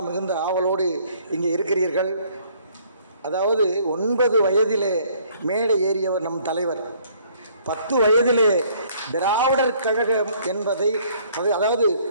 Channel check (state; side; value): inverted; both; correlation -0.61